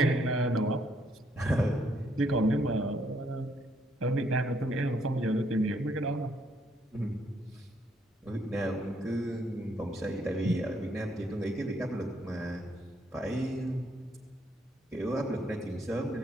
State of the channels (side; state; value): both; normal; correlation 0.71